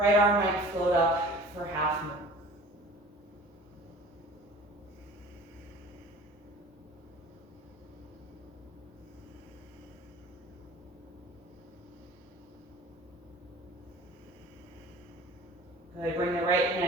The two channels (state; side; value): normal; both; correlation 0.44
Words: arm might float up for half moon. Good, bring the right